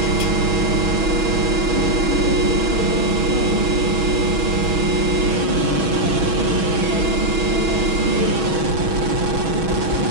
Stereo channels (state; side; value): late; left; 6.2 ms